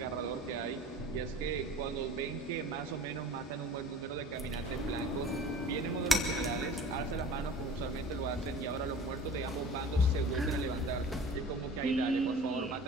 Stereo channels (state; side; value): normal; both; correlation 0.42